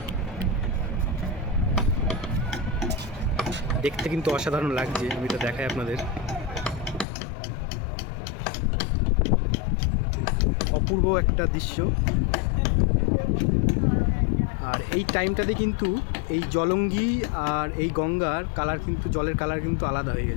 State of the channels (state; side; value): drops out; right; at 7.1 s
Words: দেখতে কিন্তু অসাধারণ লাগছে, আমি তো দেখাই আপনাদের। অপূর্ব একটা দৃশ্য। আর এই টাইমটাতে কিন্তু এই জলঙ্গি আর এই গঙ্গার কালার কিন্তু, জলের কালার কিন্তু আলাদা হয়ে